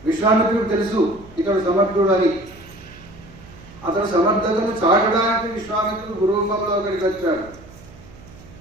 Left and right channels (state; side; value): noise; right; hum, 21 dB below the sound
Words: విశ్వామిత్రుడు తెలుసు ఇతడు సమర్థుడు అని. అతడు సమర్థతను చాటడానికి విశ్వామిత్రుడు గురురూపంలో అక్కడికి వచ్చాడు.